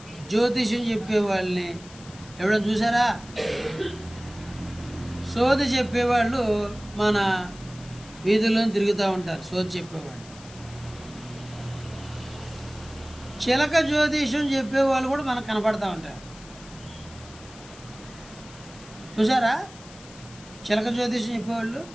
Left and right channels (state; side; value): noise; left; hiss, 20 dB below the sound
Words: జ్యోతిష్యం చెప్పేవాళ్ళని ఎవరైనా చూసారా? సోది చెప్పేవాళ్ళు మన వీధుల్లో తిరుగుతూ ఉంటారు. సోది చెప్పేవాళ్ళు. చిలక జ్యోతిష్యం చెప్పేవాళ్ళు కూడా మనకు కనపడతా ఉంటారు. చూసారా? చిలక జ్యోతిష్యం చెప్పేవాళ్ళు.